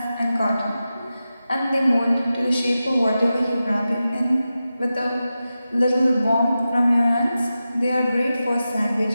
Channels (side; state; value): both; inverted; correlation -0.92